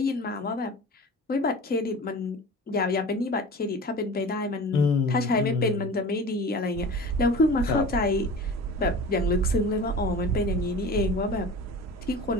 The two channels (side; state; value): both; normal; correlation 0.36